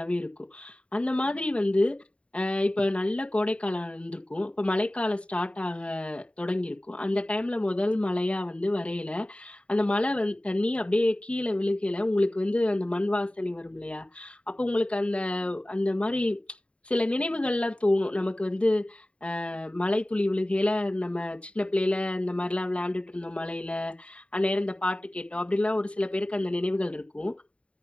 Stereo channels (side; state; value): right; late; 0.062 ms